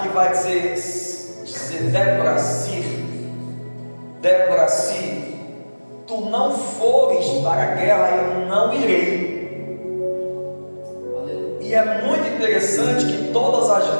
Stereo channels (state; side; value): inverted; both; correlation -1.00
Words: vai dizer Débora, se tu não fores para a guerra, eu não irei. E é muito interessante que todas as